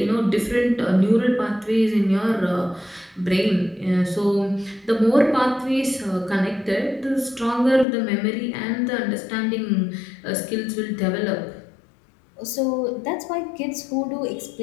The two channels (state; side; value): drops out; right; at 7.9 s